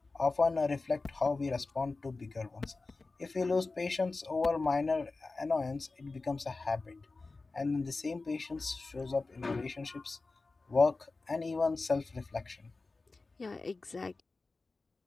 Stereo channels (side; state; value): right; quieter; 3.6 dB